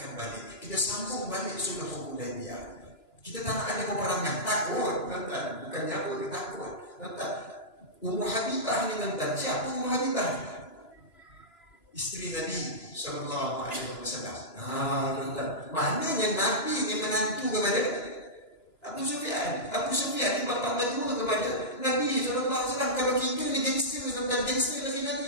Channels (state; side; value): late; right; 2.9 ms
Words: balik. Kita sambung balik sulh Hudaibiyah. Kita tak nak ada peperangan. Takut, tuan. Bukannya apa, dia takut. Tuan, Ummu Habibah ni tuan. Siapa Ummu Habibah? Isteri Nabi SAW. Tuan. Maknanya Nabi ni menantu kepada Abu Sufyan. Abu Sufyan ni bapa berdua kepada Nabi SAW. Kalau kita ni gangster, tuan. Gangster lagi